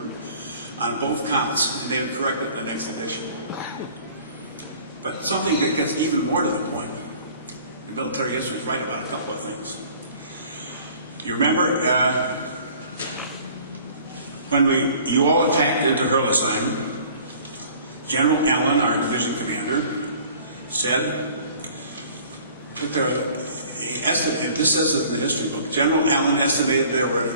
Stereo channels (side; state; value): both; inverted; correlation -0.50